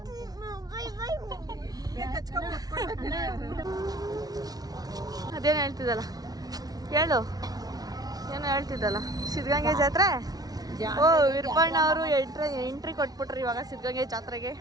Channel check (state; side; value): late; left; 0.19 ms